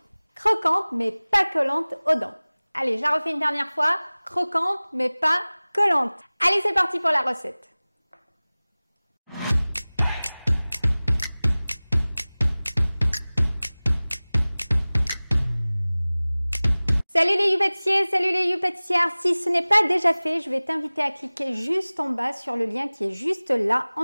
croquante, mais pas collante aux dents. Allez, je la refais une dernière fois. Croquante, mais pas collante. Allez, c'est parti pour la recette. Salut les youpâtissiers, salut les youpâtissières. Si ce n'est pas déjà fait, je vais t'inviter à cliquer juste en bas sur le lien qui est juste là, en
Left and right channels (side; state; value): both; inverted; correlation -0.99